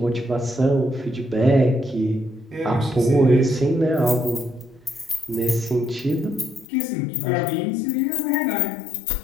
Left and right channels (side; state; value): right; drops out; at 6.7 s